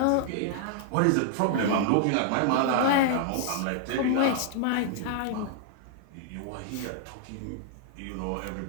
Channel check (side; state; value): both; different; correlation -0.01